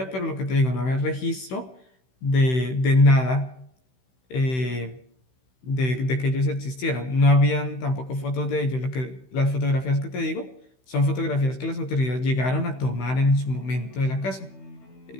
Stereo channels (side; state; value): right; late; 16 ms